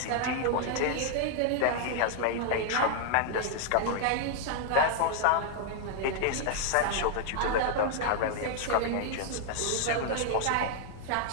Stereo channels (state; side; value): different; both; correlation 0.00